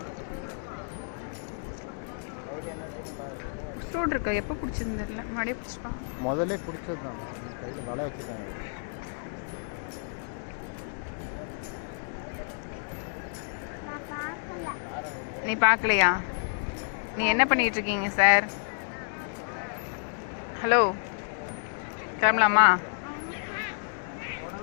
ஃப்ரூட் இருக்கா? எப்போ பிடிச்சிருந்து தெரியல. மறுபடியும் பிடிச்சிப்பாங்க. முதல்ல பிடிச்சது தான். கையில் வலை வச்சுருக்காங்க. நீ பார்க்கலையா? நீ என்ன பண்ணிட்டு இருக்கீங்க சார்? ஹலோ, கிளம்பலாமா?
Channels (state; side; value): silent; right; digital silence